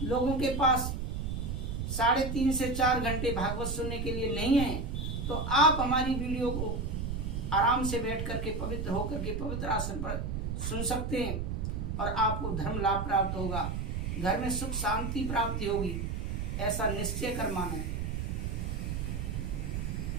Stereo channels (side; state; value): right; noise; rumble, 2 dB below the sound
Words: लोगों के पास 3.5 से 4 घंटे भागवत सुनने के लिए नहीं है, तो आप हमारी वीडियो को आराम से बैठ करके, पवित्र होकर के, पवित्र आसन पर सुन सकते हैं और आपको धर्म लाभ प्राप्त होगा, घर में सुख शांति प्राप्ति होगी, ऐसा निश्चय कर माने।